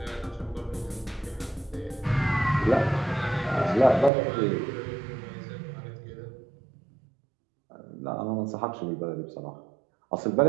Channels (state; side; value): drops out; left; at 4.1 s